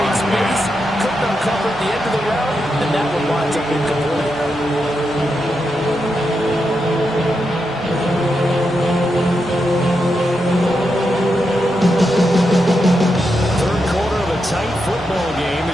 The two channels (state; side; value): normal; both; correlation 0.85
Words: space. Couldn't uncover at the end of the round. And that one winds up incomplete. Third quarter of a tight football game